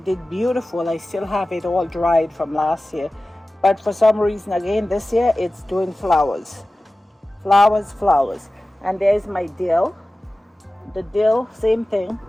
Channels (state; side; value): normal; both; correlation 0.96